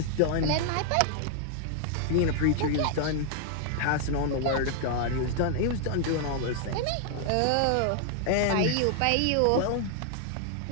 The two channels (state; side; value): different; both; correlation 0.00